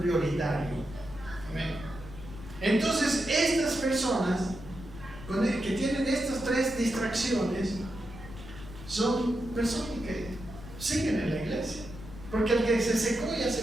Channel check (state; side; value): noise; left; rumble, 14 dB below the sound